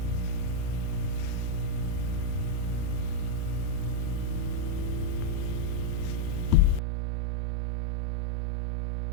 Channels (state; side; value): drops out; left; at 6.8 s